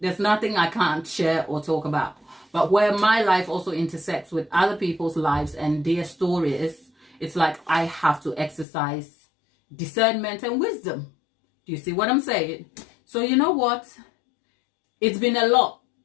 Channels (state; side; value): drops out; right; at 8.7 s